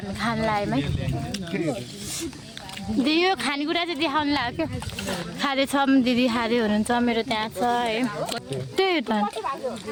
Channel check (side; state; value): both; identical; correlation 1.00